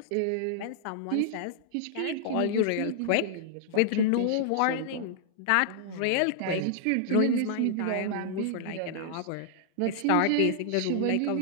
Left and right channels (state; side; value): different; both; correlation -0.01